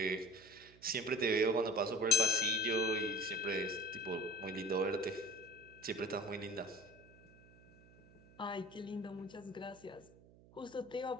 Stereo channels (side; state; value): right; noise; hum, 24 dB below the sound